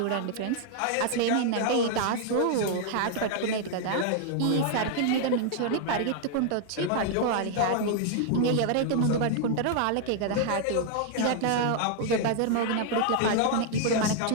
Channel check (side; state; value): both; different; correlation 0.00